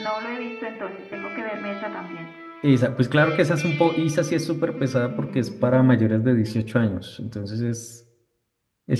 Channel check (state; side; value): identical; both; correlation 1.00